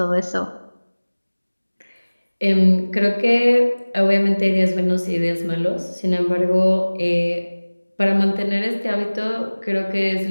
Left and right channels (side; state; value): both; inverted; correlation -1.00